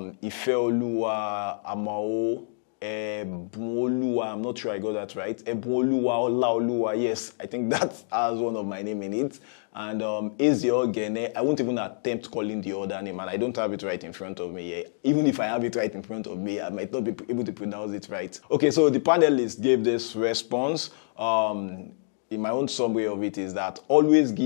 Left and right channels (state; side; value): silent; right; digital silence